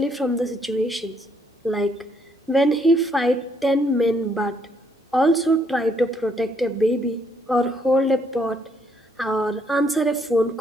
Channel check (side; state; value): both; normal; correlation 0.70